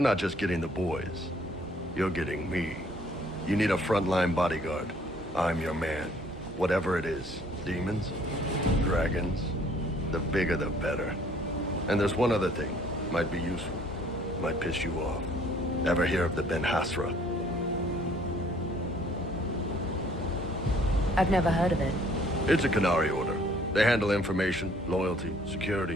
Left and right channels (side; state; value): both; normal; correlation 0.59